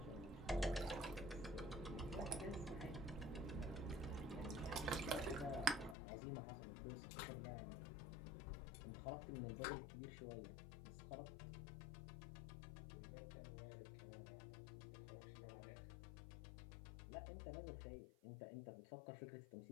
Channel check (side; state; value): right; drops out; at 6.0 s